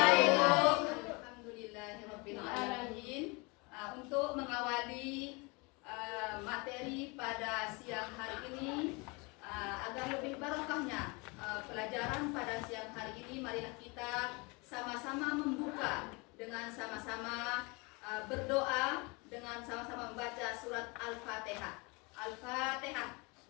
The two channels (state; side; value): quieter; right; 28.3 dB